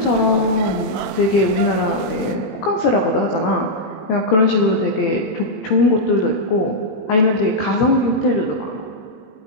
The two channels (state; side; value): late; right; 17 ms